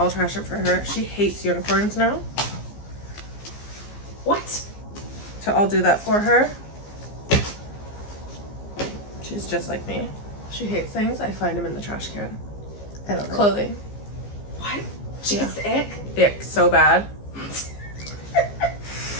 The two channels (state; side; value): late; right; 15 ms